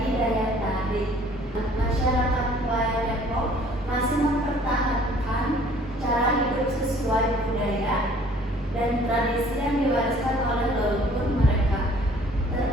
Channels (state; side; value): normal; both; correlation 0.55